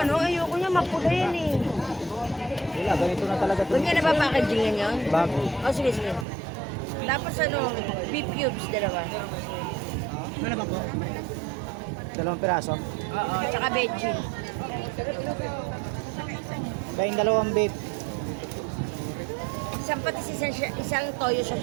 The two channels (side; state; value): left; drops out; at 6.2 s